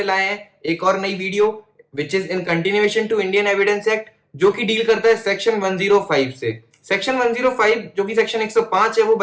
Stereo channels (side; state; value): both; identical; correlation 1.00